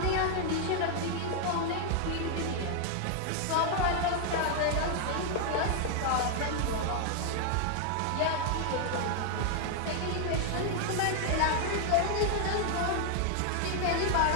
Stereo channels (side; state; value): both; different; correlation 0.00